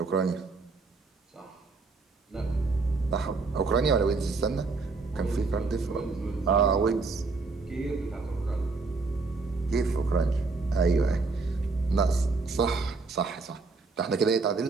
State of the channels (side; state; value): left; quieter; 4.0 dB